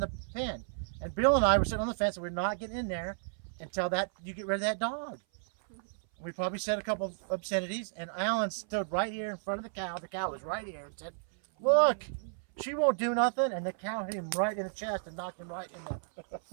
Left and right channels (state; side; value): silent; left; 56 dB below the other